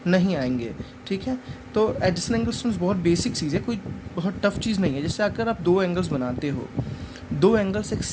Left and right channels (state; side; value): identical; both; correlation 1.00